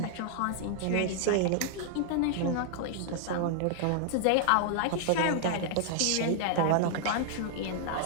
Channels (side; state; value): both; different; correlation -0.01